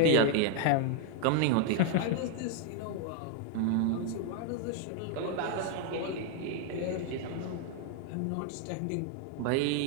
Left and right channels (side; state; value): both; different; correlation 0.00